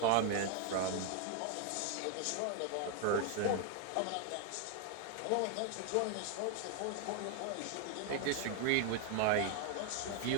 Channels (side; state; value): both; different; correlation 0.01